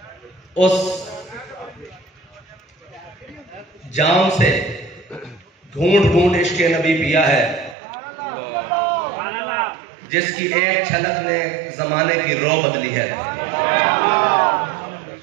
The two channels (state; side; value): drops out; left; at 7.8 s